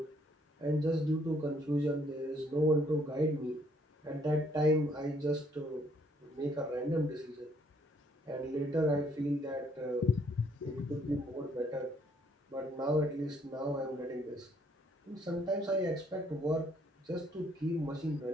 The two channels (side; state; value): both; normal; correlation 0.67